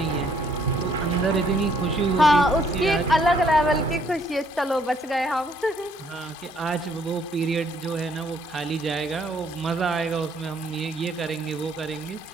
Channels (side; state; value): both; normal; correlation 0.65